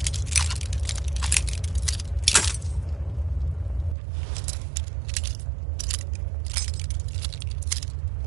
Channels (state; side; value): drops out; left; at 4.0 s